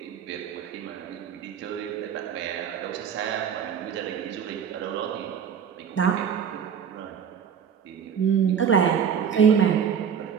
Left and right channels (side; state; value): left; quieter; 7.8 dB